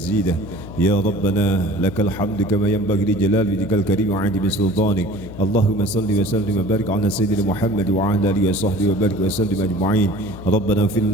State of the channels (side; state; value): left; noise; hum, 12 dB below the sound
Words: يا ربنا لك الحمد كما ينبغي لجلال وجهك الكريم وعظيم سلطانك اللهم صل وسلم وبارك على سيدنا محمد وعلى آله وصحبه وبارك وسلم أجمعين. ربنا اغفر